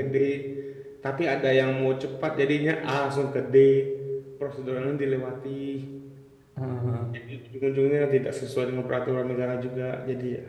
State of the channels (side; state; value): both; identical; correlation 1.00